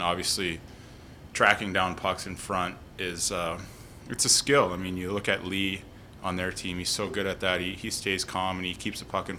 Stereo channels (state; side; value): identical; both; correlation 1.00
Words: tracking down pucks in front is it's a skill. I mean, you look at Lee on their team; he's so good at that. He stays calm and he keeps the puck in